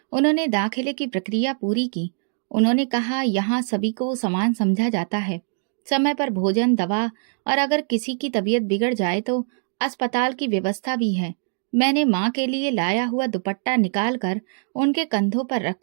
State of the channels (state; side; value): silent; left; digital silence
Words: उन्होंने दाखिले की प्रक्रिया पूरी की। उन्होंने कहा, यहाँ सभी को समान समझा जाता है, समय पर भोजन, दवा, और अगर किसी की तबीयत बिगड़ जाए तो अस्पताल की व्यवस्था भी है। मैंने माँ के लिए लाया हुआ दुपट्टा निकाल कर उनके कंधों पर